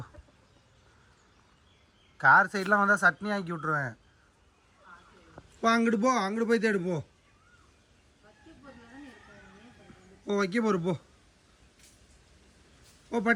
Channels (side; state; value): both; identical; correlation 1.00